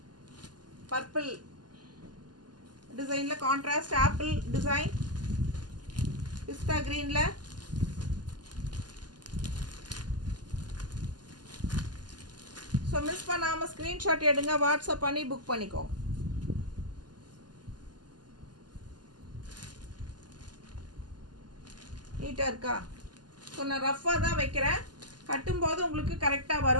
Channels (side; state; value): left; late; 0.70 ms